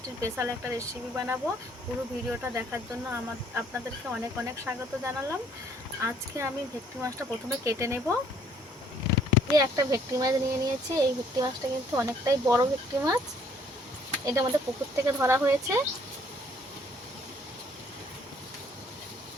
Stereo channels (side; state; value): both; normal; correlation 0.62